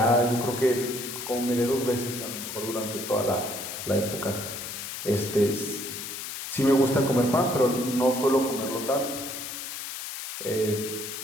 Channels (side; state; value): left; noise; hiss, 7 dB below the sound